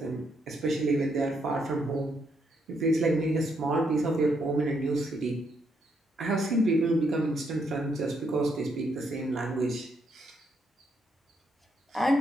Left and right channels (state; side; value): normal; both; correlation 0.76